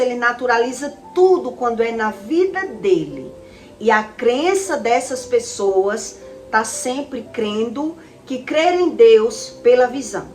naturaliza tudo quando é na vida dele. E a crença dessas pessoas está sempre crendo que crer em Deus pela visão.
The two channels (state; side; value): identical; both; correlation 1.00